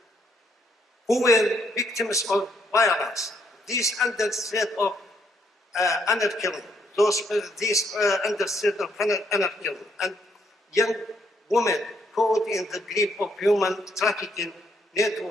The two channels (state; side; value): normal; both; correlation 0.71